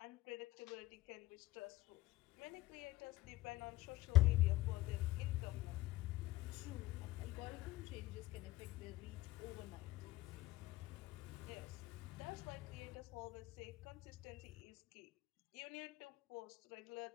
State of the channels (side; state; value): right; quieter; 17.5 dB